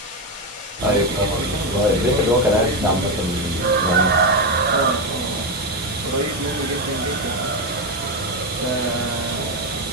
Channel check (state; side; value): normal; both; correlation 0.09